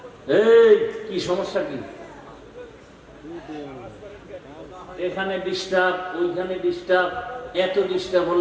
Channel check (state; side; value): identical; both; correlation 1.00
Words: এই কি সমস্যা কি? এখানে ডিস্টার্ব, ওইখানে ডিস্টার্ব, এত ডিস্টার্ব